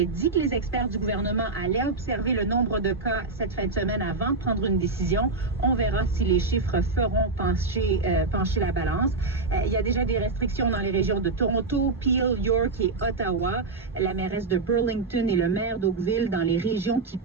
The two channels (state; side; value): quieter; left; 3.7 dB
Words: dit que les experts du gouvernement allaient observer le nombre de cas cette fin de semaine avant de prendre une décision. On verra si les chiffres feront pencher la balance. Il y a déjà des restrictions dans les régions de Toronto, Peel, York et Ottawa. La mairesse de Burlington et le maire d'Oakville, dans les régions qui